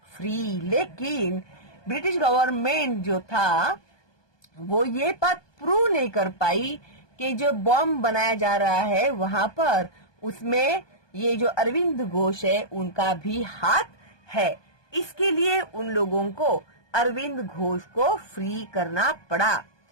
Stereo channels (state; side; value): late; right; 1.2 ms